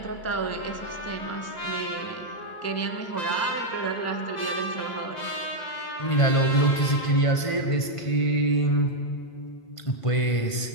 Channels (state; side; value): late; right; 1.5 ms